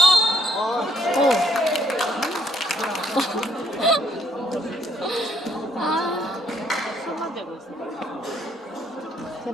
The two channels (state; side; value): normal; both; correlation 0.68